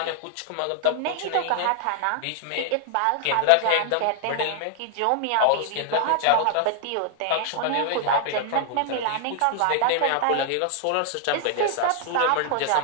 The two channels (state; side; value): different; both; correlation 0.00